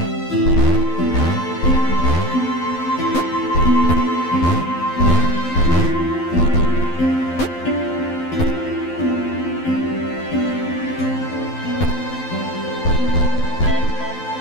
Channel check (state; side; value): late; right; 12 ms